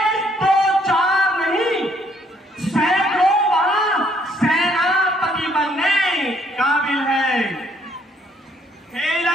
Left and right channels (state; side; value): normal; both; correlation 0.67